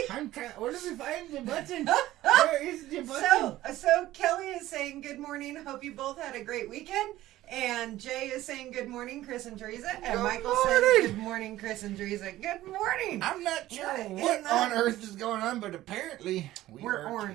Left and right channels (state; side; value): quieter; left; 15.3 dB